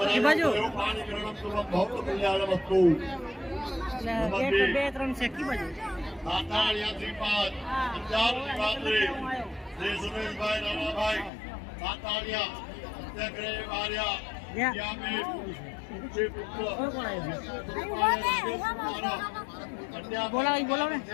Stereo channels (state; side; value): drops out; right; at 11.3 s